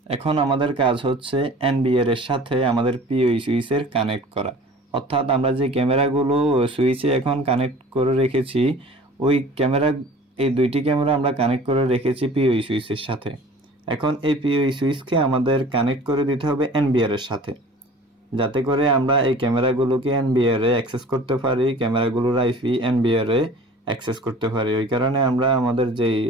এখন আমাদের কাজ হচ্ছে এনবিআর এর সাথে আমাদের পিওই সুইচের কানেক্ট করা, অর্থাৎ আমরা যে ক্যামেরাগুলো সুইচে এখন কানেক্ট করে রেখেছি ওই ক্যামেরা, এই দুইটি ক্যামেরা আমরা কানেক্ট করে রেখেছি পিওই সুইচের সাথে। এখন এই পিওই সুইচকে আমাদের কানেক্ট করে দিতে হবে এনবিআর এর সাথে, যাতে করে আমরা এই ক্যামেরাগুলোকে এনবিআর এ অ্যাক্সেস করতে পারি, ক্যামেরাগুলোর আইপি এনবিআর এ অ্যাক্সেস করতে পারি। ওই কারণে আমরা আমাদের যেই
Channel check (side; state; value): both; normal; correlation 0.45